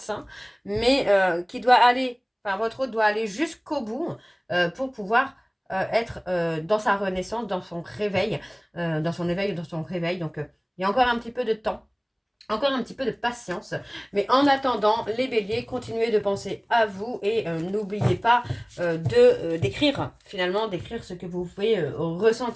mais qui doit aller, enfin votre hôte doit aller jusqu'au bout pour pouvoir être dans sa renaissance, dans son réveil, dans son éveil, dans son réveil. Donc il y a encore un petit peu de temps. Encore un petit peu de patience. Mais en attendant, les béliers, continuez de penser à vous et n'oubliez pas d'écrire, finalement, d'écrire ce que vous pouvez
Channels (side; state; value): both; identical; correlation 1.00